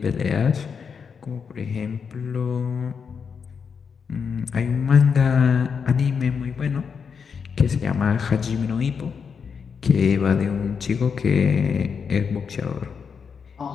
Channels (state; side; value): quieter; right; 6.2 dB